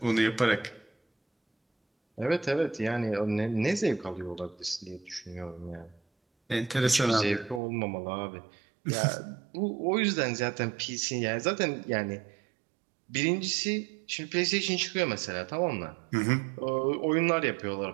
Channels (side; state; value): left; drops out; at 7.6 s